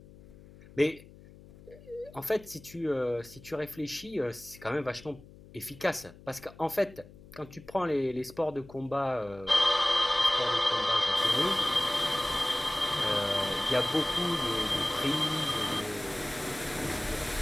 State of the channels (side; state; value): left; noise; hum, 21 dB below the sound